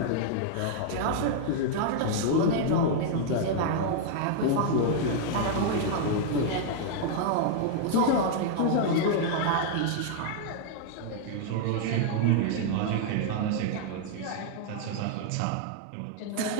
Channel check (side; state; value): both; different; correlation -0.01